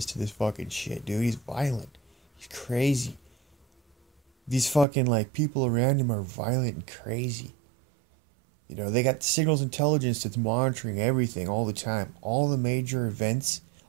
to this fucking shit, dude. He's violent. He's crazy. These fucking, like, people around him are violent and crazy. You know, they got signals intelligence that's monitoring everything all the time. All the major events,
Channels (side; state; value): left; drops out; at 4.9 s